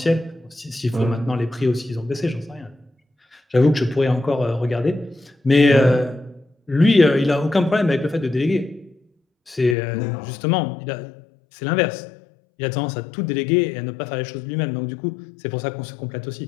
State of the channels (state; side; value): drops out; right; at 9.8 s